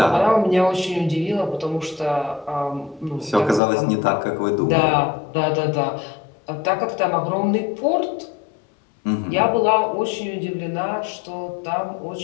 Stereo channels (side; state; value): right; drops out; at 3.6 s